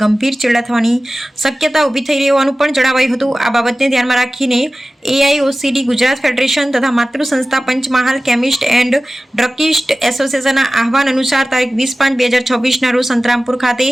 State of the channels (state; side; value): normal; both; correlation 0.97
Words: ગંભીર ચેડા થવાની શક્યતા ઊભી થઈ રહી હોવાનું પણ જણાવાયું હતું. આ બાબતને ધ્યાનમાં રાખીને AIOCD ગુજરાત ફેડરેશન તથા માતૃ સંસ્થા પંચમહાલ કેમિસ્ટ એન્ડ ડ્રગિસ્ટ એસોસિએશનના આહવાન અનુસાર તારીખ 20/5/2026ના રોજ સંતરામપુર ખાતે